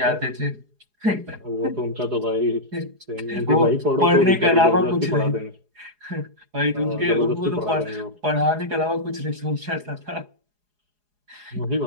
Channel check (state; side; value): late; left; 4.8 ms